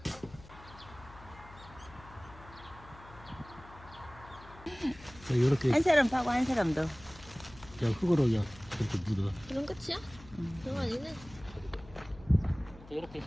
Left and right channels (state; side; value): noise; left; hum, 19 dB below the sound